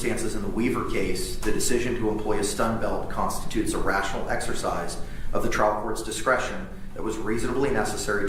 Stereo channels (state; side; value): identical; both; correlation 1.00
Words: in the Weaver case, the decision to employ a stun belt constitutes a rational exercise of the trial court's discretion that was reasonably necessary